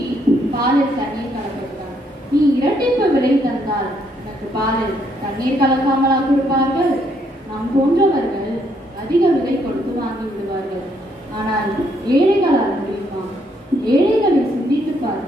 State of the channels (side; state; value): both; normal; correlation 0.71